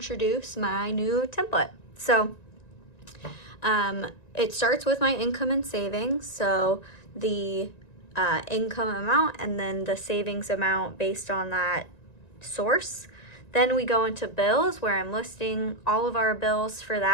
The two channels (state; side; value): late; right; 1.9 ms